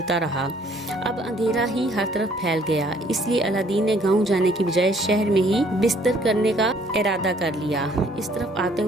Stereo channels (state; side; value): normal; both; correlation 0.61